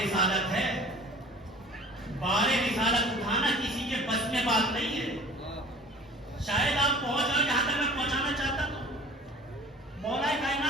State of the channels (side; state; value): both; normal; correlation 0.45